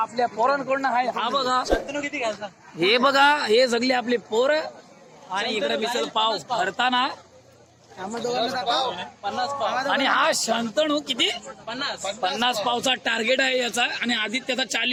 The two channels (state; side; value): identical; both; correlation 1.00